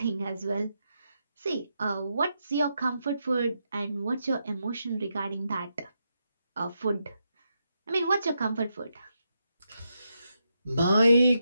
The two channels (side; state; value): both; inverted; correlation -0.84